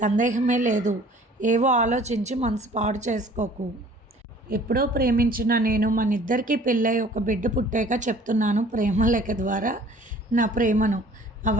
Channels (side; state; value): both; normal; correlation 0.51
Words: లేదు. ఏవో ఆలోచించి మనసు పాడు చేసుకోకు. ఎప్పుడో ప్రేమించిన నేను మన ఇద్దరికీ పెళ్ళై ఒక బిడ్డ పుట్టాక చెప్తున్నాను ప్రేమ లేఖ ద్వారా నా ప్రేమను.